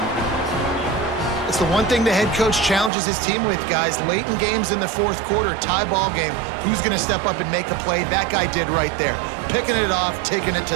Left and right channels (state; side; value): drops out; left; at 2.9 s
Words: It's the one thing the head coach challenges his team with, guys. Late in games in the fourth quarter, tie ball game. Who's going to step up and make a play? That guy did right there. Picking it off, taking it to